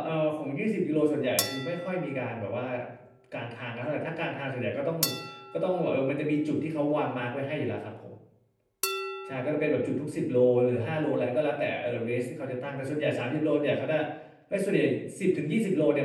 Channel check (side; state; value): both; identical; correlation 1.00